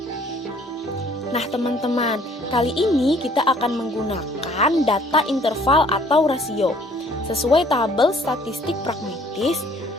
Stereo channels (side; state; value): both; normal; correlation 0.58